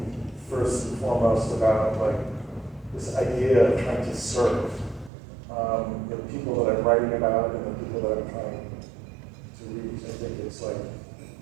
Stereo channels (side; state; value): left; drops out; at 5.1 s